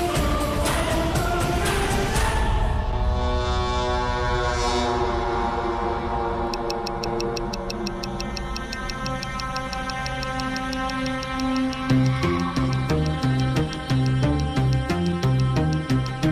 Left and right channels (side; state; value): both; identical; correlation 1.00